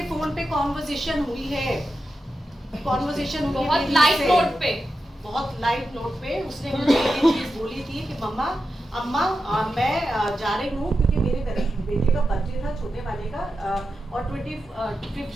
फोन पे कॉन्वर्सेशन हुई है। कॉन्वर्सेशन बहुत लाइट नोट पे, बहुत लाइट नोट पे उसने मुझे ये चीज बोली थी कि मम्मा, अम्मा मैं जा रही हूँ, क्योंकि मेरे बेटे का बर्थडे था, छोटे वाले का, और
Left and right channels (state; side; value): normal; both; correlation 0.90